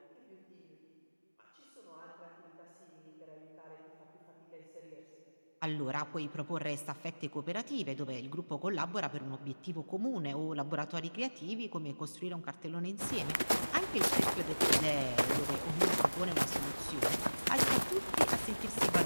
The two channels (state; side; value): inverted; both; correlation -1.00